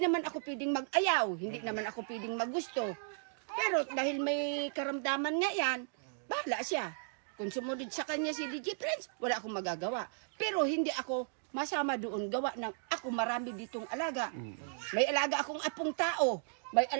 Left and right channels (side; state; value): left; silent; digital silence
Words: ako pwedeng mag-ayaw, hindi naman ako pwedeng magusto. Pero dahil may karamdaman nga yan, bahala siya. Kung sumunod sa kanya si DJ Franz, wala akong magagawa. Pero hindi ako masama doon, gawa ng ako marami ditong alaga. May alaga akong apong tao, may